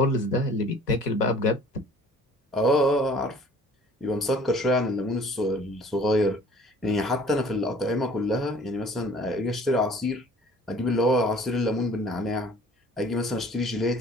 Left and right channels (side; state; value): both; normal; correlation 0.51